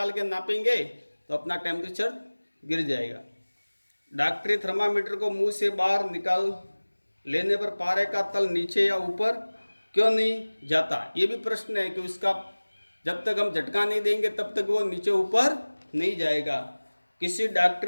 के नापेंगे तो अपना टेम्परेचर गिर जाएगा। डॉक्टरी थर्मामीटर को मुंह से बाहर निकाल लेने पर पारे का तल नीचे या ऊपर क्यों नहीं जाता? ये भी प्रश्न है कि उसका जब तक हम झटका नहीं देंगे तब तक वो नीचे ऊपर नहीं जाएगा। किसी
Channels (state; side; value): inverted; both; correlation -1.00